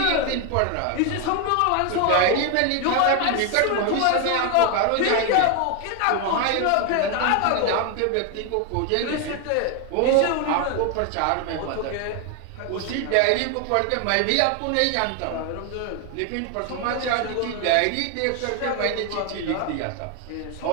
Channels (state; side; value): different; both; correlation 0.01